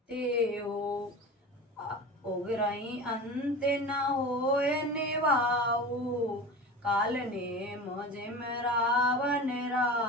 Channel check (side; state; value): both; normal; correlation 0.32